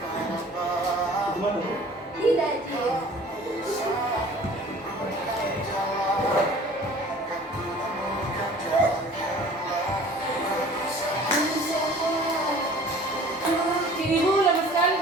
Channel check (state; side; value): normal; both; correlation 0.48